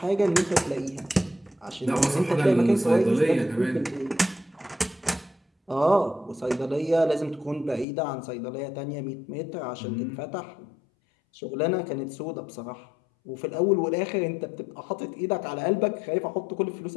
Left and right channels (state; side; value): drops out; right; at 7.9 s